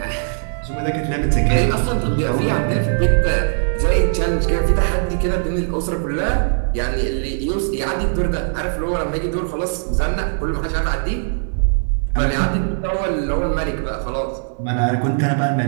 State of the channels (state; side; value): silent; left; digital silence